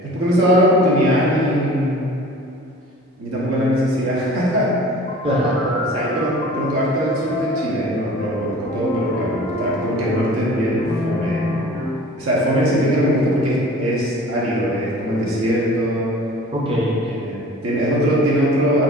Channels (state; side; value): normal; both; correlation 0.44